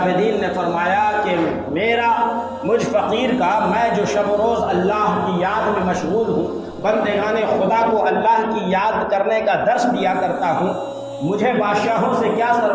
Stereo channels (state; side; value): identical; both; correlation 1.00